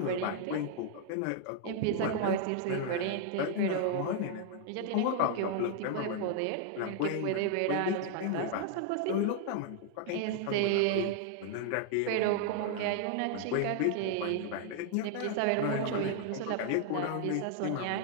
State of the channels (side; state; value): both; different; correlation 0.00